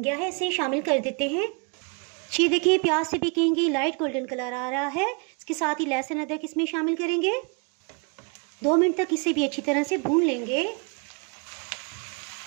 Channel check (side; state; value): left; quieter; 35.0 dB